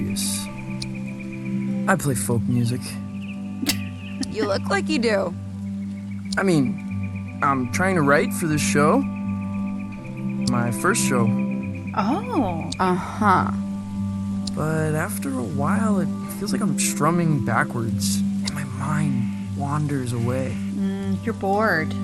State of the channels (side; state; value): both; identical; correlation 1.00